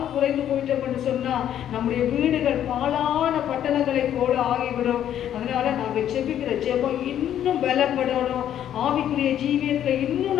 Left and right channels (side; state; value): right; quieter; 10.6 dB